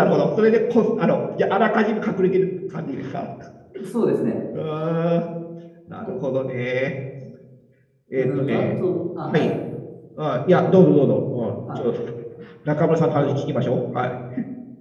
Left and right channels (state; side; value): identical; both; correlation 1.00